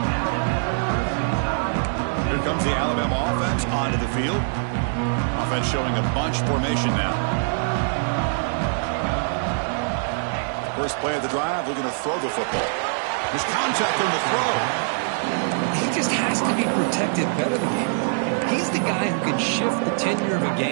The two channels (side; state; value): left; silent; digital silence